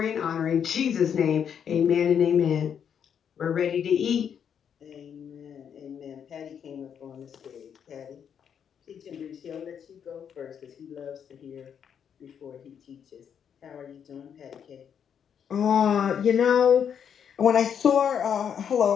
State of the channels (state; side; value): quieter; right; 8.0 dB